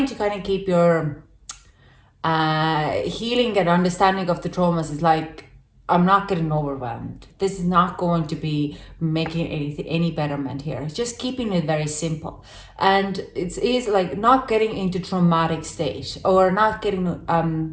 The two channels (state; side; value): identical; both; correlation 1.00